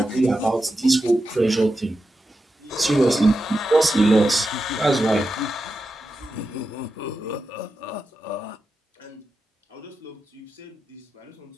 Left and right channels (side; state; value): both; normal; correlation 0.90